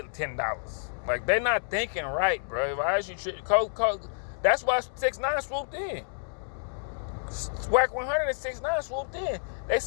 $10. Like, they're not thinking right, bro. That's why 6ix9ine swooped in. Swag 100 and 6ix9ine swooped in. They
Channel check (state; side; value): silent; right; digital silence